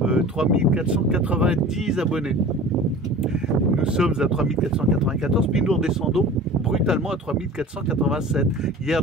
3490 abonnés. Nous sommes à 3494, puis nous redescendons brutalement à 3487. Hier,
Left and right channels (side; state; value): both; normal; correlation 0.40